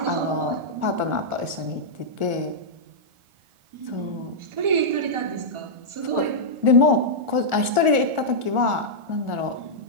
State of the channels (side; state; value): left; late; 1.4 ms